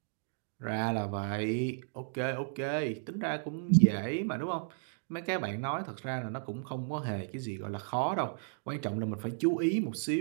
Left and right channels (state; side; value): silent; left; digital silence